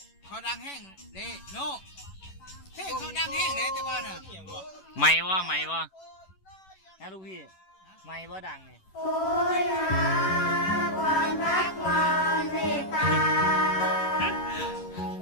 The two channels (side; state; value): right; late; 11 ms